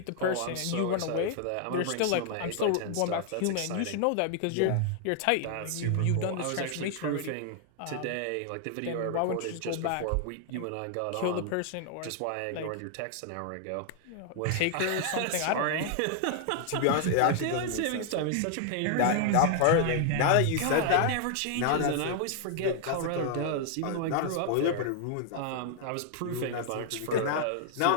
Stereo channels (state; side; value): different; both; correlation 0.00